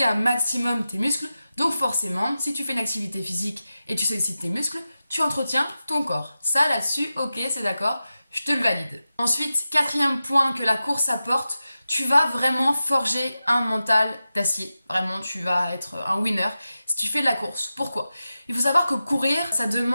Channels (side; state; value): both; inverted; correlation -0.93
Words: un maximum tes muscles. Donc forcément, si tu fais une activité physique et tu sollicites tes muscles, tu entretiens ton corps. Ça là-dessus, ok, c'est d'accord, je te le valide. Ensuite, 4e point que la course apporte, tu vas vraiment forger un mental d'acier. Vraiment, tu vas être un winner si tu fais de la course. Pourquoi? Il faut savoir que courir, ça